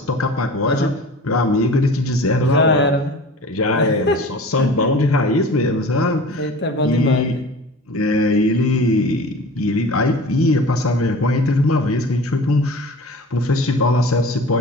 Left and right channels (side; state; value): both; normal; correlation 0.40